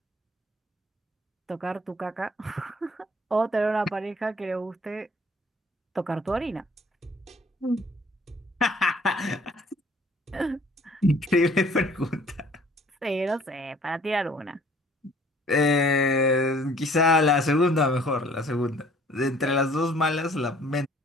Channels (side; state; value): both; normal; correlation 0.56